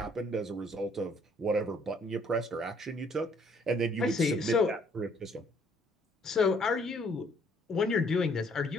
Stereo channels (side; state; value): both; normal; correlation 0.64